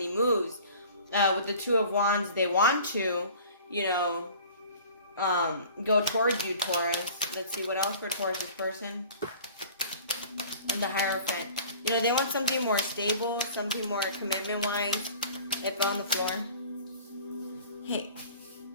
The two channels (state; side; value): inverted; both; correlation -0.46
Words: moves. With the Two of Wands, they want to, you know, go towards you, Taurus. Let's see, what else for Taurus's person? And the Hierophant. You know, they want something more stable, something more commitment-wise. It fell on the floor. Hey.